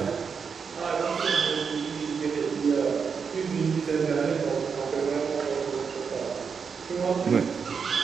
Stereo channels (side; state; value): left; quieter; 6.0 dB